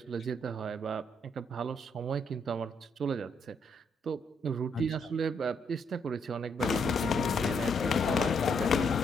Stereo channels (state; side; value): normal; both; correlation 0.74